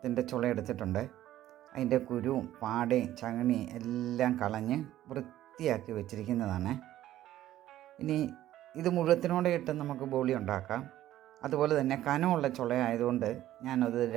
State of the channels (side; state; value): left; quieter; 13.5 dB